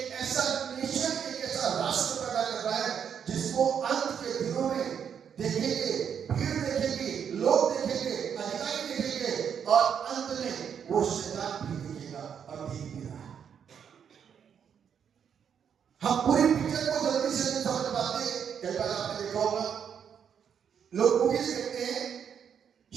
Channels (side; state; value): left; quieter; 7.8 dB